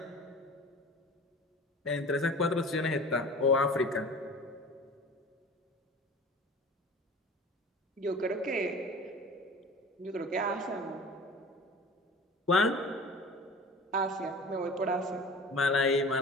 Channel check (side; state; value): both; normal; correlation 0.40